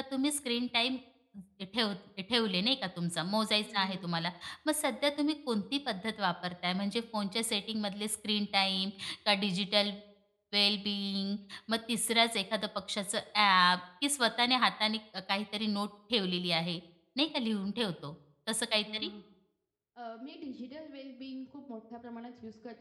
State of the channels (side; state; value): both; identical; correlation 1.00